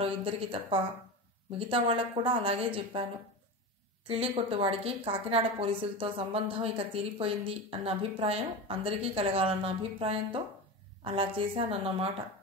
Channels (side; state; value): both; normal; correlation 0.24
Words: ఇద్దరికి తప్ప మిగతా వాళ్ళకు కూడా అలాగే చెప్పాను. కిళ్ళి కొట్టువాడికి కాకినాడ పోలీసులతో సంబంధం ఇక తీరిపోయింది అన్న అభిప్రాయం అందరికీ కలగాలన్న అభిప్రాయంతో అలా చేశానన్నమాట